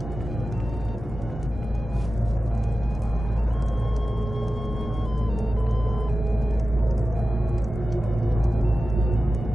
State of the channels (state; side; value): normal; both; correlation 0.94